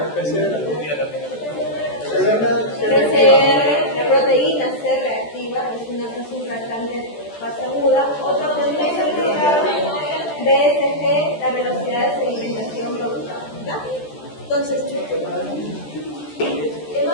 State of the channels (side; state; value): right; late; 14 ms